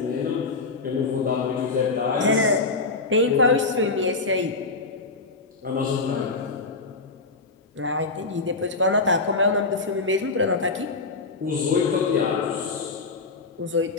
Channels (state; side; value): quieter; right; 3.8 dB